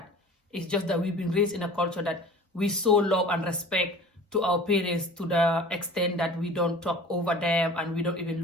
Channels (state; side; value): normal; both; correlation 0.42